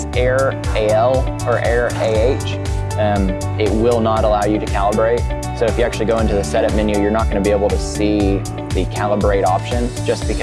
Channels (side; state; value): both; identical; correlation 1.00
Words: error AL or error AH, it will not allow you to calibrate. So if you actually go into the setup menu, you're not going to be able to see the calibrate option just